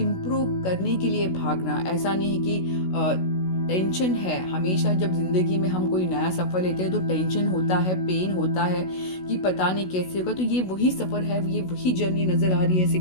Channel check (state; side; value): late; right; 16 ms